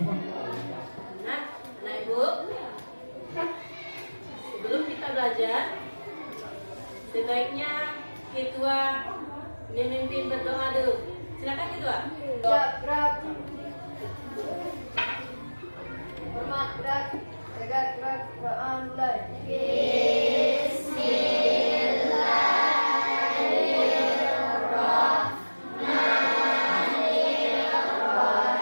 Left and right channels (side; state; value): both; inverted; correlation -1.00